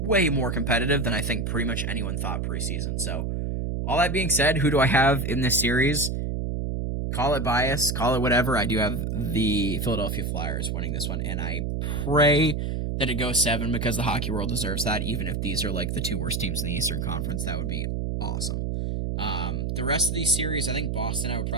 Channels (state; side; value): noise; right; hum, 1 dB below the sound